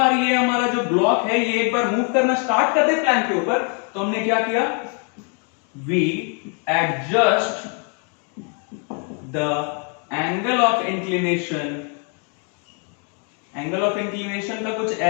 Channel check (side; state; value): right; quieter; 38.9 dB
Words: ये हमारा जो ब्लॉक है ये एक बार मूव करना स्टार्ट कर दे प्लैंक के ऊपर, तो हमने क्या किया, we adjust the angle of inclination. Angle of inclination का कुछ